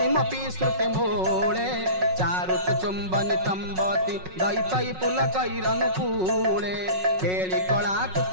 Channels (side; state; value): left; late; 5.4 ms